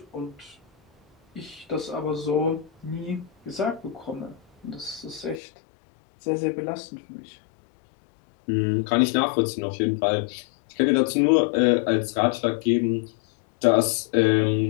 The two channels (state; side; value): drops out; right; at 5.4 s